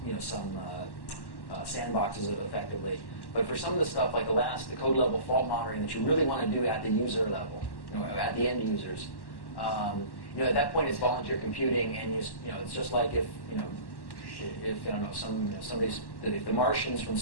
sandboxes effectively. But for some of the stuff like the code level fault monitoring that you really want to do at the user level, at the end users, at that point it's volunteer computing, and it's just like if I don't know, if the Martians from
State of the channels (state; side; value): late; right; 1.1 ms